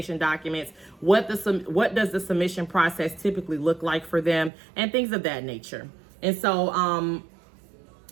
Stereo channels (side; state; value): left; drops out; at 4.5 s